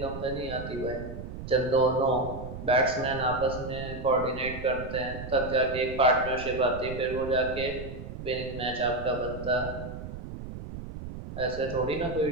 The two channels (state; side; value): noise; right; rumble, 10 dB below the sound